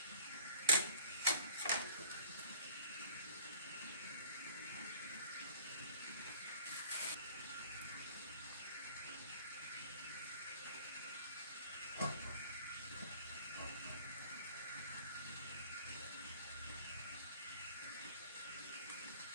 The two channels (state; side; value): inverted; both; correlation -0.52